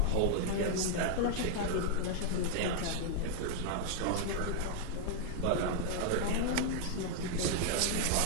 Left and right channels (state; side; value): different; both; correlation 0.00